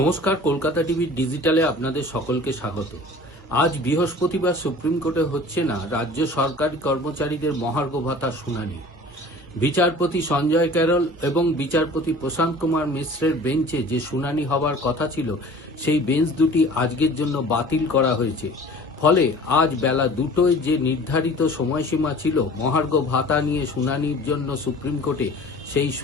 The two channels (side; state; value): both; normal; correlation 0.44